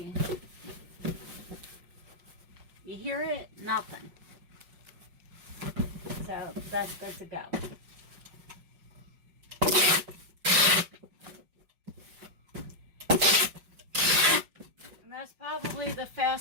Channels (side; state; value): left; late; 5.5 ms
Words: You hear it? Nothing. So that's good to go. And that's probably the